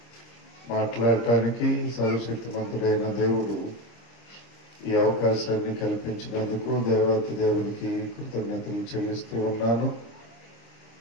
మాట్లాడటానికి సర్వశక్తిమంతుడైన దేవుడు ఈ అవకాశాన్ని కల్పించినందుకు దేవాతి దేవునికి కృతజ్ఞతలు చెల్లిస్తూ ఉన్నాను.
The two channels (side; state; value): right; late; 25 ms